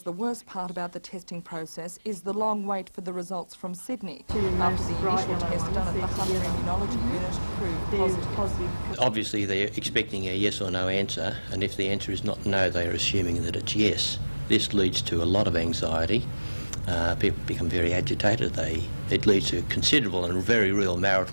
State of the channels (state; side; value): inverted; both; correlation -1.00